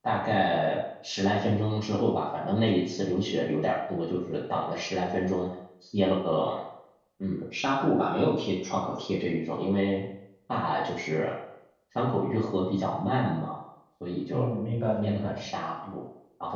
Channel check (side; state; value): both; identical; correlation 1.00